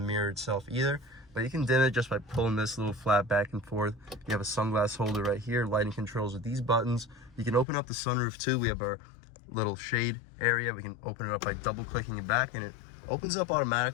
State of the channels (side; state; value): right; drops out; at 7.7 s